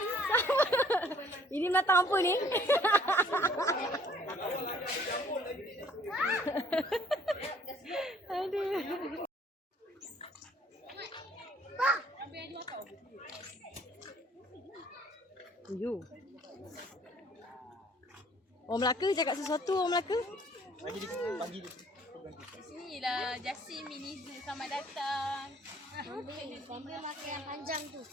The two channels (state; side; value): normal; both; correlation 0.58